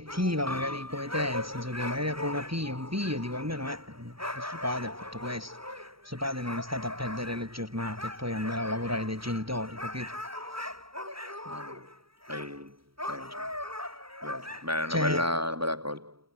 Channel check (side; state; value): left; late; 0.75 ms